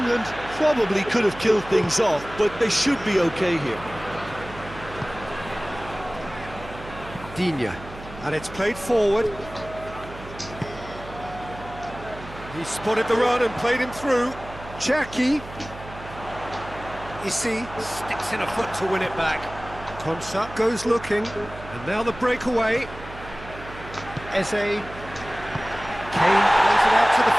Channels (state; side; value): noise; right; hum, 15 dB below the sound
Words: probably could have killed things off, but they should be okay here. Digne, and it's played forward. He spotted the run and played him through. Cherki. Issy sticks in a foot to win it back. Konsa goes looking, and now the breakaway. Eze. Kane plays it out to the